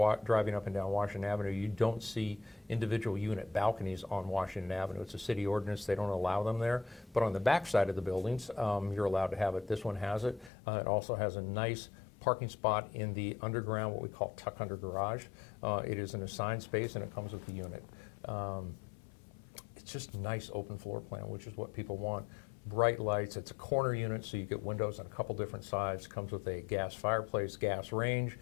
driving up and down Washington Avenue, you don't see individual unit balconies on Washington Avenue. It's a city ordinance, they don't allow them there. But on the back side of the buildings, you're allowed to have it. This one has it. It also has a nice parking spot in the underground, what we call tuck under garage. It is an assigned space and it comes with the unit. It's just a nice open floor plan, which is what people want. Bright lights, it's a corner unit, so you get windows on a couple different sides. Comes with a gas fireplace, gas range,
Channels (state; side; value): drops out; right; at 10.5 s